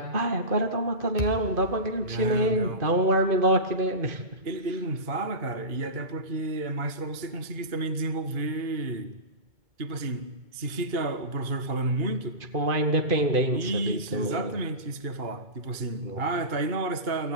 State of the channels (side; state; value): left; late; 2.2 ms